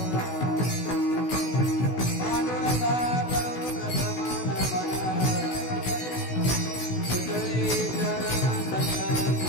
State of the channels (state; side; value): late; right; 16 ms